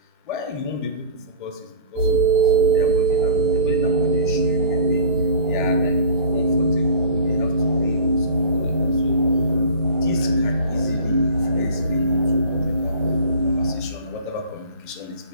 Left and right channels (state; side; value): inverted; both; correlation -0.42